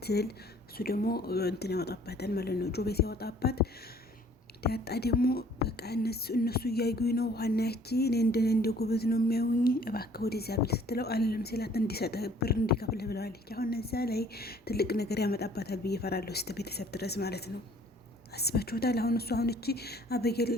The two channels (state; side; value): normal; both; correlation 0.56